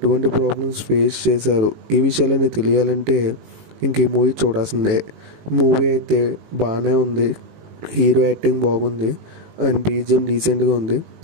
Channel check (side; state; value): left; late; 19 ms